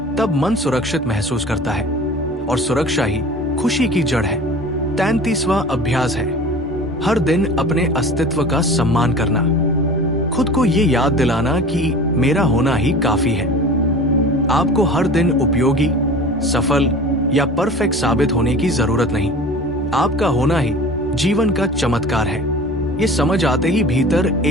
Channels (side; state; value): both; normal; correlation 0.39